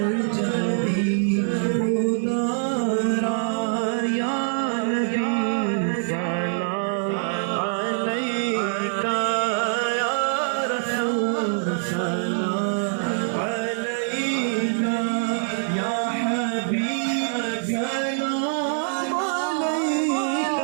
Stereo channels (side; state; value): left; silent; 56 dB below the other